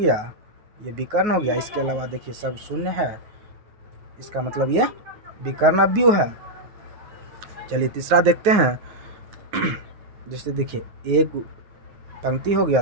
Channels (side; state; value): left; late; 9.5 ms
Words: ये विकर्ण हो गया, इसके अलावा देखिए सब शून्य है, इसका मतलब ये विकर्ण अवयव है। चलिए तीसरा देखते हैं, जैसे देखिए एक पंक्ति हो गया,